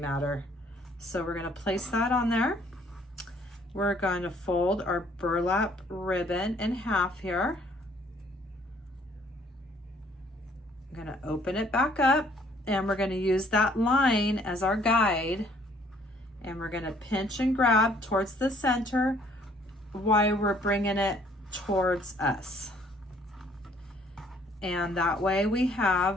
So we're going to place that on there. We're going to fold our burlap ribbon in half here. I'm going to open it back up, and we're going to use that line as our guide. And we're going to pinch and grab towards the center while we're bringing it towards us. And that way we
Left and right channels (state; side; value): normal; both; correlation 0.61